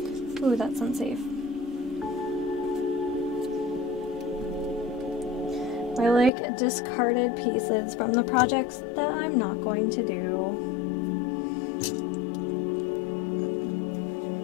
Ooh, that's unsafe. I like discarded pieces from the projects that I'm not going to do.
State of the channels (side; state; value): right; drops out; at 6.3 s